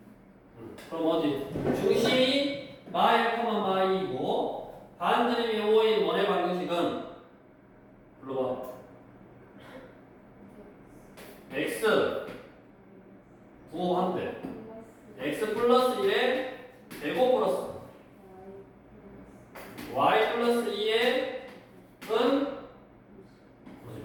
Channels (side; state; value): both; identical; correlation 1.00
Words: 그럼 어디? 중심이 마 1, 마 2이고 반지름이 5인 원의 방정식은 불러봐. x 9한대 x 플러스 1에 제곱 플러스 y 플러스 2의 은